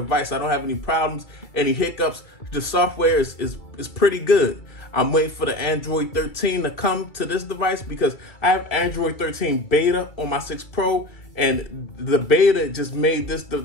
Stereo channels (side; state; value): right; late; 2.3 ms